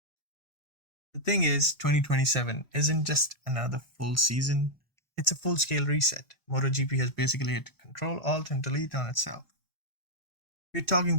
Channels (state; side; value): normal; both; correlation -0.02